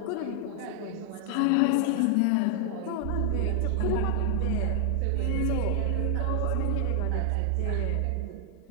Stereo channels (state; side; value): different; both; correlation 0.00